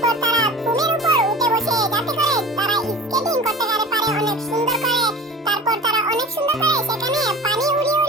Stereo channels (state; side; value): normal; both; correlation 0.36